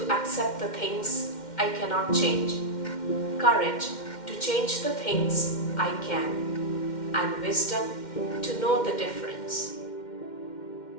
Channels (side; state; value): right; late; 2.1 ms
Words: accept the things I cannot change, courage to change the things I can, and wisdom to know the difference.